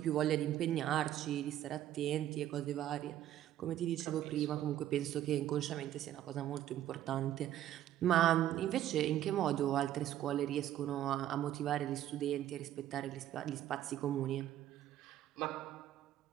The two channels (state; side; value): quieter; left; 12.2 dB